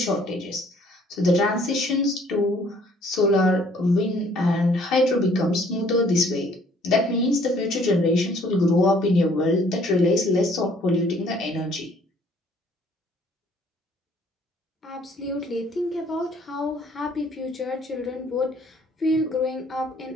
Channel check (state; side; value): normal; both; correlation 0.60